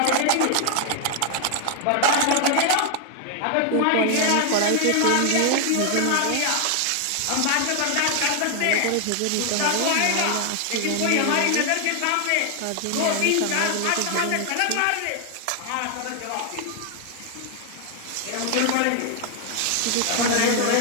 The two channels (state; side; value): different; both; correlation 0.00